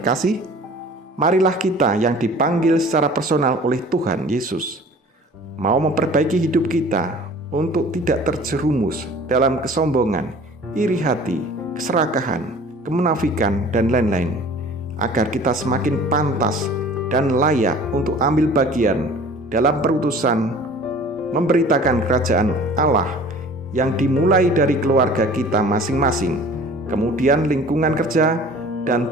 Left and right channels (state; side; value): normal; both; correlation 0.46